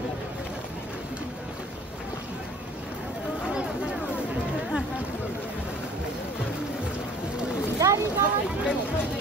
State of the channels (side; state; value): both; normal; correlation 0.51